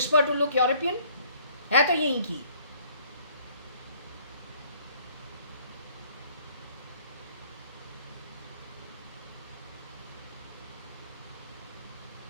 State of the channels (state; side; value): inverted; both; correlation -0.60